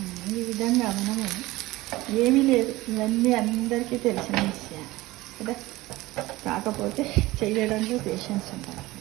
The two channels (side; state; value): left; quieter; 19.2 dB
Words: ఈ విధంగా మనము ఏమీ లేదు, ఇవన్నీ అందరికీ తెలిసిన విషయాలు కదా, కాకపోతే చేయడంలో పేషెన్స్ ఉండాలి